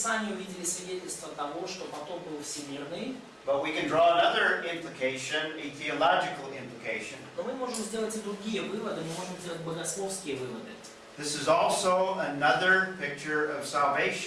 увидели свидетельство того, что потоп был всемирный. But we can draw another implication, a theological implication. Но мы можем сделать и другие выводы, мы можем сделать богословские выводы. This is also another picture of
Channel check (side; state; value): both; identical; correlation 1.00